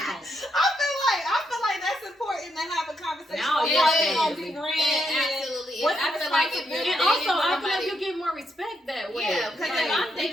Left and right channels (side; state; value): both; normal; correlation 0.79